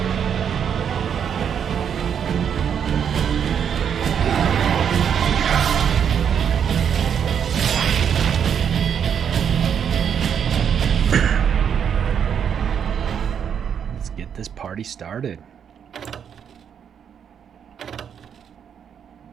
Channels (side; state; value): left; quieter; 8.0 dB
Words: Let's get this party started.